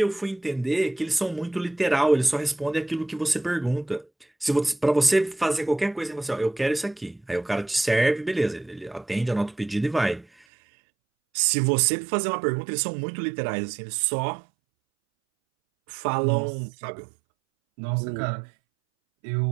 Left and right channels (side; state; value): left; drops out; at 10.5 s